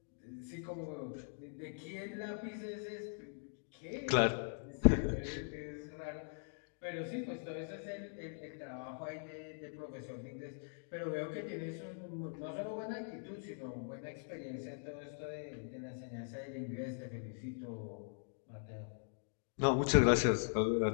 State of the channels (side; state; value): right; silent; digital silence